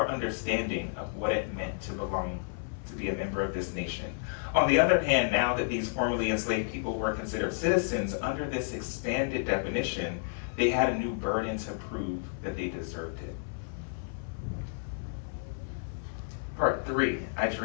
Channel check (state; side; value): silent; right; 57 dB below the other